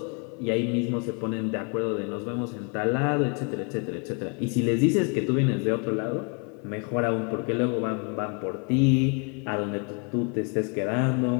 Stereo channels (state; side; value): quieter; right; 35.5 dB